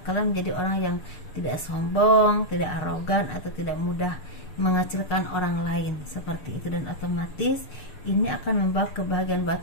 kalian menjadi orang yang tidak sombong, tidak arogan, atau tidak mudah mengecilkan orang lain, seperti itu. Dan otomatis ini akan membawa kebahagiaan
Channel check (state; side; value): late; right; 6.7 ms